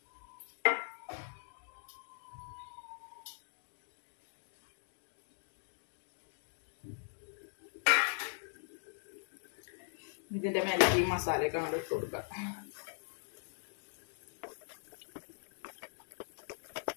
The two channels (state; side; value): silent; right; digital silence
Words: ഇതിന്റെ മേലേക്ക് ഈ മസാലയൊക്കെ അങ്ങോട്ട് ഇട്ട് കൊടുക്കാം.